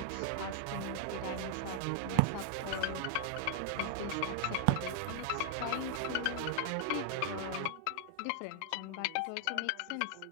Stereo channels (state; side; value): different; both; correlation -0.01